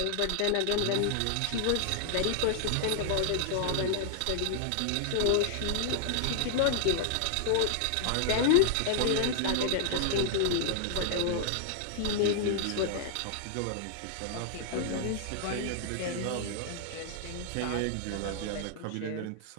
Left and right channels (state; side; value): different; both; correlation 0.00